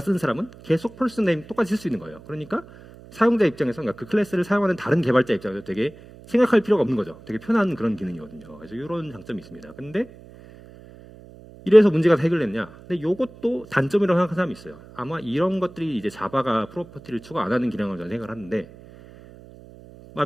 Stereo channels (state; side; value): noise; right; hum, 20 dB below the sound